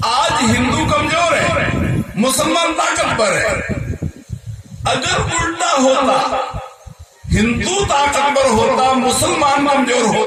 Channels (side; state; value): both; identical; correlation 1.00